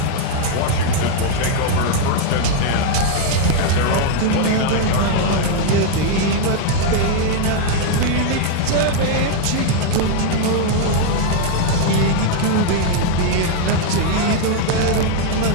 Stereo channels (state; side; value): different; both; correlation 0.00